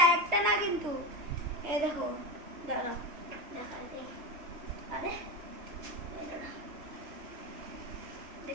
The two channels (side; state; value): left; late; 3.2 ms